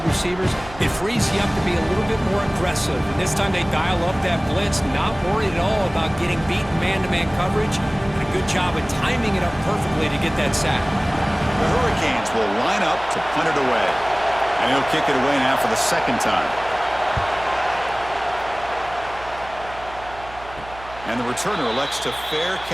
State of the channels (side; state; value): right; noise; hum, 17 dB below the sound